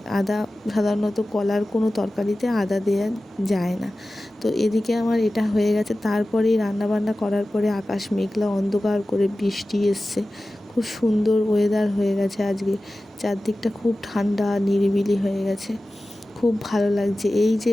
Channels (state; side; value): normal; both; correlation 0.95